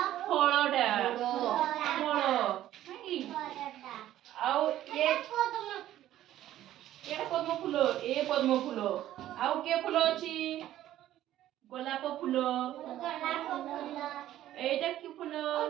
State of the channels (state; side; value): quieter; left; 13.2 dB